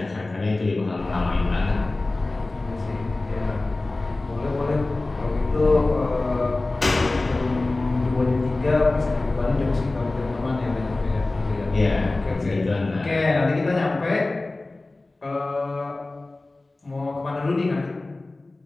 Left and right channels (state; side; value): quieter; right; 3.1 dB